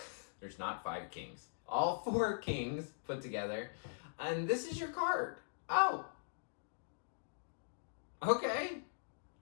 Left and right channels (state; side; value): silent; right; digital silence